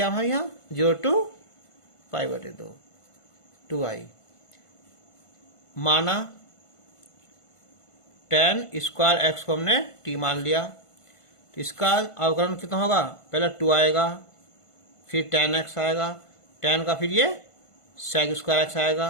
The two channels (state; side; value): late; right; 1.5 ms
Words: हमारे यहाँ 0 to π/2 2i माना tan स्क्वायर x को हमने t मान लिया तो इसका अवकलन कितना होगा, पहले 2 आएगा फिर tan x आएगा, tan का फिर ये sec स्क्वायर x आएगा